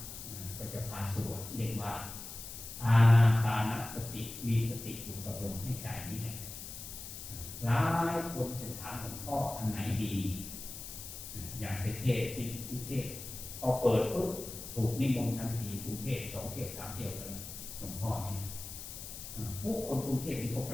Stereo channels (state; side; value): noise; left; hiss, 10 dB below the sound